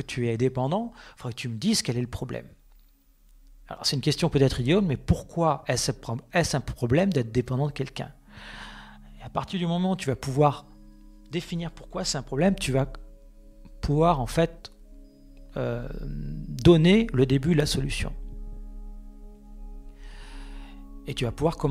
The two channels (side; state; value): both; identical; correlation 1.00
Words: tu es dépendant, il faudrait que tu me dises quel est le problème. Alors c'est une question peut-être idiote, mais pourquoi est-ce un problème d'être dépendant de quelqu'un? Et à partir du moment où tu vas pouvoir définir pourquoi c'est un problème, tu vas pouvoir en fait donner le début de la solution. Et tu vas pouvoir